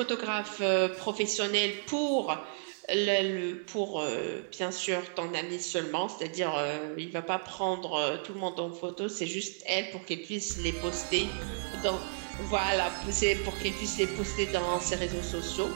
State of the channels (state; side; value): silent; left; 56 dB below the other